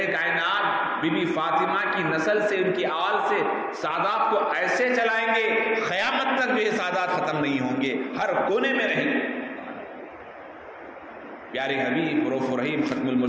کائنات بی بی فاطمہ کی نسل سے، ان کی آل سے سادات کو ایسے چلائیں گے قیامت تک بھی یہ سادات ختم نہیں ہوں گے، ہر کونے میں رہیں گے۔ پیارے حبیب رؤوف الرحیم ختم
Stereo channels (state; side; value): identical; both; correlation 1.00